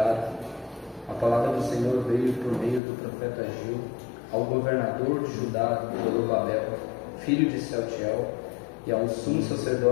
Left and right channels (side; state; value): right; drops out; at 2.8 s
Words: a palavra do Senhor veio por meio do profeta Ageu ao governador de Judá, Zorobabel, filho de Sealtiel, e ao sumo